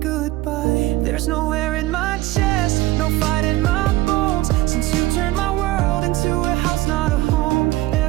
There's nowhere in my chest, no fight in my bones, since you turned my world into a house, not a home.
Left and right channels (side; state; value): left; quieter; 17.4 dB